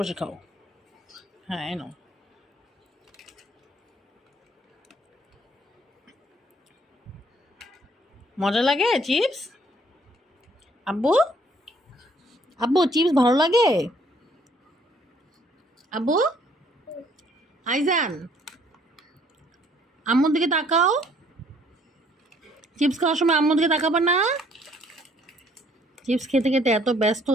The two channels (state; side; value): normal; both; correlation 0.63